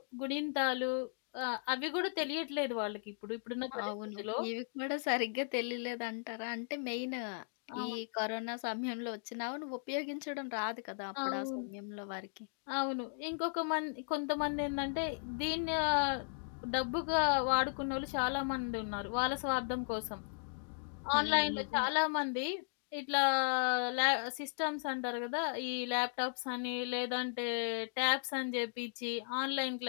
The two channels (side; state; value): right; silent; digital silence